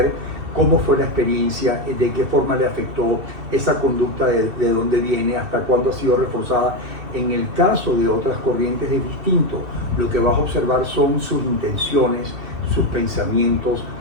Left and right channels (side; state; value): left; late; 2.7 ms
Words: cómo fue la experiencia, de qué forma le afectó esa conducta, de dónde viene, hasta cuándo ha sido reforzada. En el caso de otras corrientes es distinto. Lo que vas a observar son sus intenciones, sus pensamientos,